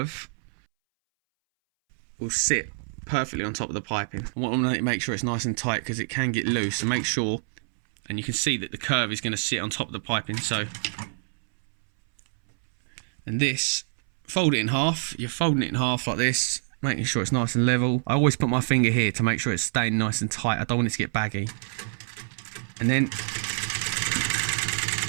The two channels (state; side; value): silent; left; 61 dB below the other